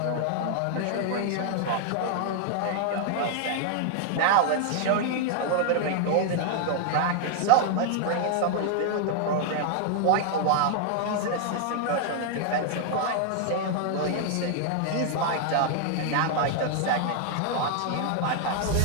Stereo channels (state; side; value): different; both; correlation 0.00